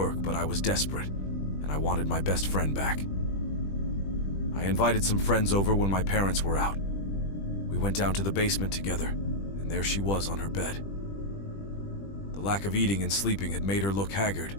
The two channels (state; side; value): late; right; 20 ms